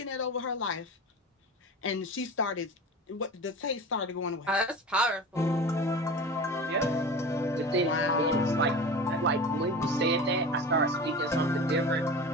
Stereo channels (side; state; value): both; normal; correlation 0.33